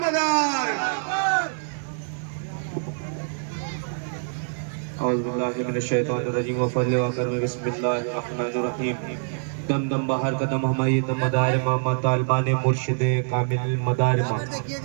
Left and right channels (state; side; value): silent; left; digital silence